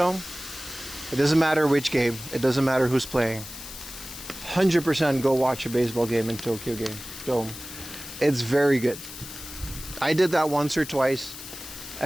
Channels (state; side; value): noise; left; hiss, 12 dB below the sound